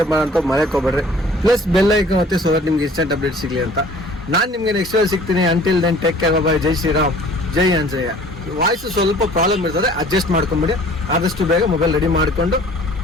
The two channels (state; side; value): normal; both; correlation 0.51